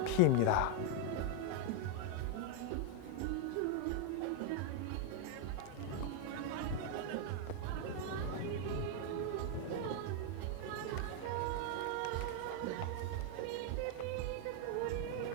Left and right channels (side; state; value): both; different; correlation 0.00